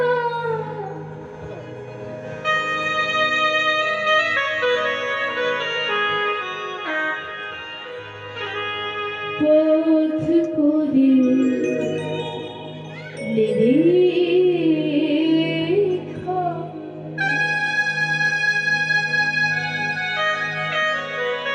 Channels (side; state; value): both; identical; correlation 1.00